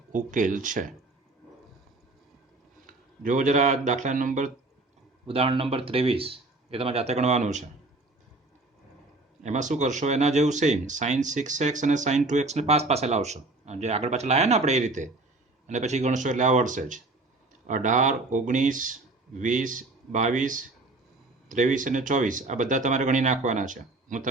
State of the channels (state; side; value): quieter; left; 3.2 dB